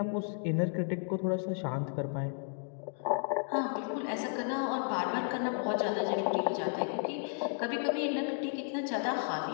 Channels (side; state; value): right; silent; 56 dB below the other